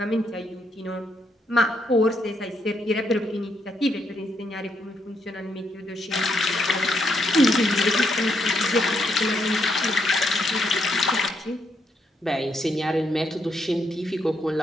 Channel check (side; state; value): both; normal; correlation 0.77